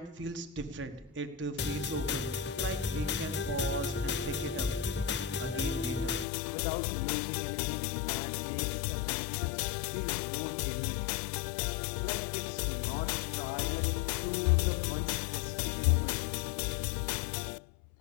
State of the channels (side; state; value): right; drops out; at 6.2 s